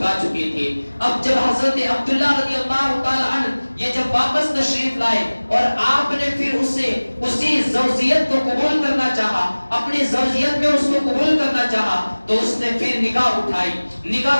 چکی تھی، اب جب حضرت عبداللہ رضی اللہ تعالیٰ عنہ یہ جب واپس تشریف لائے اور آپ نے پھر اسے اسی زوجیت کو قبول کرنا چاہا، اپنی زوجیت میں اس کو قبول کرنا چاہا، تو اس نے پھر نگاہ اٹھائی،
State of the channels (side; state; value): both; inverted; correlation -1.00